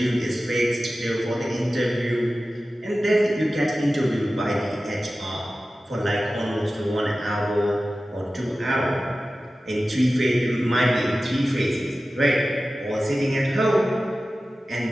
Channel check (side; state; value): both; normal; correlation 0.95